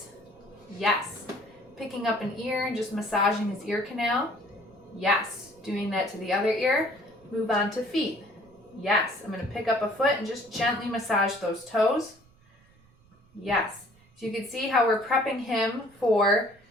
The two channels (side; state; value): right; noise; rumble, 30 dB below the sound